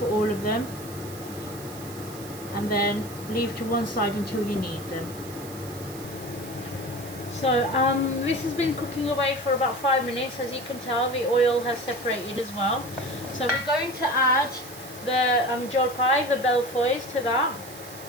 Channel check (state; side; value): noise; right; hiss, 16 dB below the sound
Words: all of them, and then leave to one side until you need them. So this has been cooking away for about 5 minutes. As you can tell, the oil has separated as well. So we're going to add the jolpai, the belfois, to that.